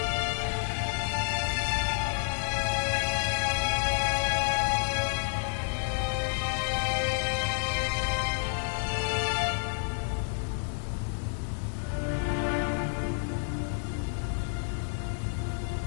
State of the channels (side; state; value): right; silent; digital silence